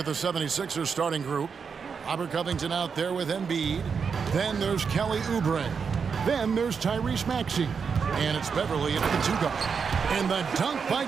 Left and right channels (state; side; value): quieter; left; 6.0 dB